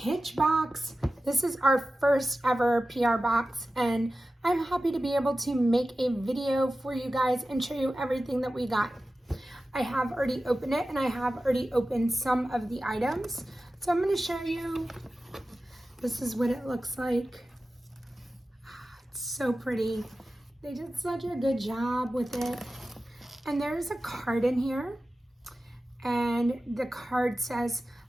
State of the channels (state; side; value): normal; both; correlation 0.94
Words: box. This is our first ever PR box and I'm happy to be able to make a video for you guys and show you everything that we got. I have already opened it and I have already opened some of the items. So I'm going to show you, this is what it looks like. It's so pretty. They did such a good job with it. And there's a card in here. And the card says,